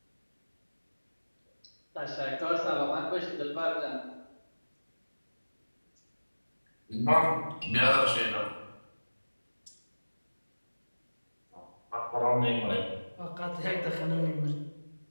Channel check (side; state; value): both; inverted; correlation -1.00